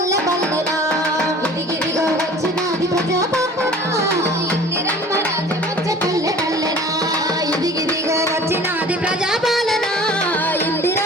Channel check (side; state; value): both; normal; correlation 0.45